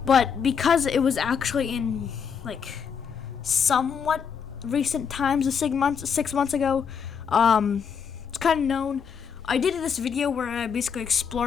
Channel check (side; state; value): right; quieter; 6.8 dB